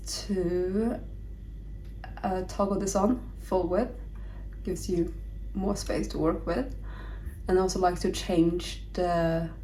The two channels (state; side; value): identical; both; correlation 1.00